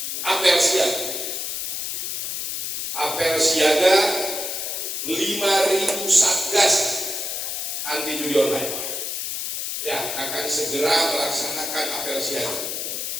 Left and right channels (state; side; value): noise; left; hiss, 3 dB below the sound